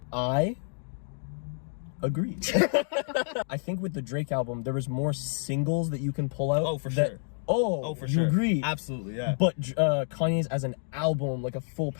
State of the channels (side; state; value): right; silent; digital silence